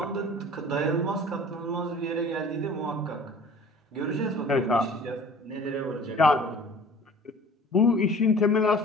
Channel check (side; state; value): both; normal; correlation 0.46